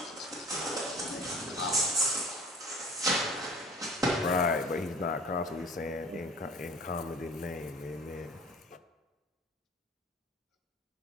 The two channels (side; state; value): both; normal; correlation 0.44